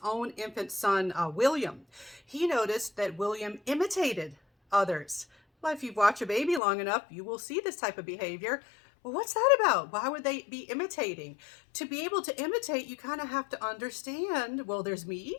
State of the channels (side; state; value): right; drops out; at 6.6 s